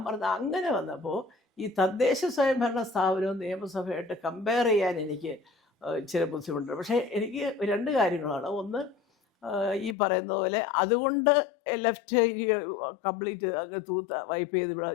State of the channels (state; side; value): drops out; right; at 10.0 s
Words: പറഞ്ഞത് അങ്ങനെ വന്നപ്പോൾ ഈ തദ്ദേശ സ്വയംഭരണ സ്ഥാപനവും നിയമസഭയായിട്ട് കമ്പയർ ചെയ്യാൻ എനിക്ക് ഇച്ചിരി ബുദ്ധിമുട്ടുണ്ട്. പക്ഷേ എനിക്ക് 2 കാര്യങ്ങളാണ്. ഒന്ന്, ഈ പറയുന്ന പോലെ അതുകൊണ്ട് ലെഫ്റ്റ് കംപ്ലീറ്റ് അങ്ങ് വൈപ്പ് ചെയ്ത് ഇവിടെ